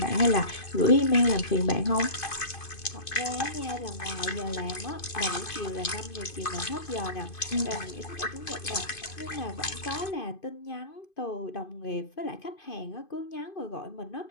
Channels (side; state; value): right; late; 2.5 ms